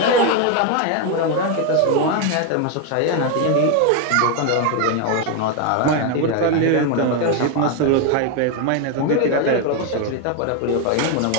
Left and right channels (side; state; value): both; different; correlation 0.01